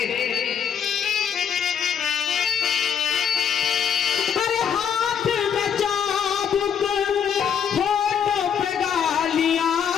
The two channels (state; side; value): quieter; right; 7.9 dB